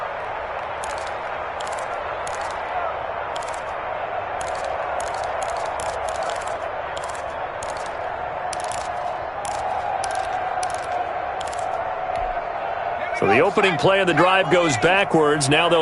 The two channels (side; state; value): both; identical; correlation 1.00